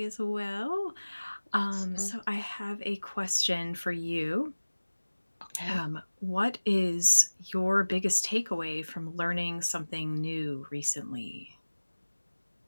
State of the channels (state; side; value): inverted; both; correlation -1.00